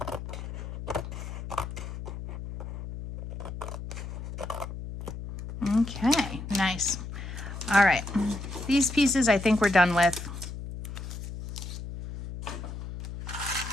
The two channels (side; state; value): left; noise; hum, 8 dB below the sound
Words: Okay, nice. All right, these pieces I think we're done with.